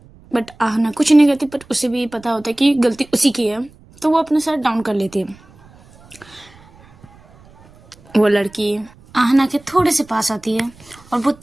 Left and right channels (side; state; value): right; noise; rumble, 26 dB below the sound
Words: बट आहना कुछ नहीं कहती, बट उसे भी पता होता है कि गलती उसी की है, तो वो अपना सर डाउन कर लेती है। वो लड़की आहना के थोड़े से पास आती है और वो